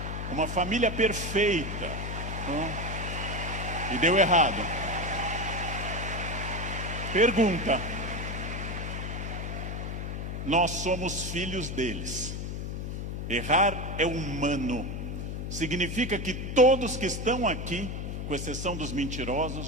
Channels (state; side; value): noise; left; hum, 4 dB below the sound